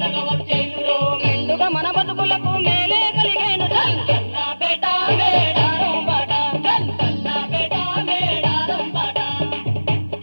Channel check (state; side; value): inverted; both; correlation -1.00